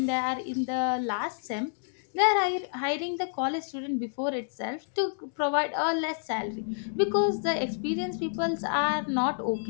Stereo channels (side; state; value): right; silent; digital silence